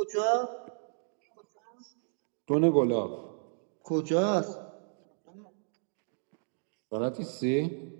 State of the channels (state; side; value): silent; left; digital silence